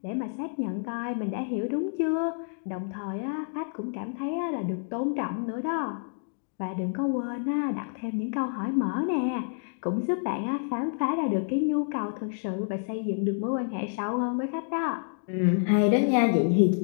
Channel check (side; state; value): right; silent; digital silence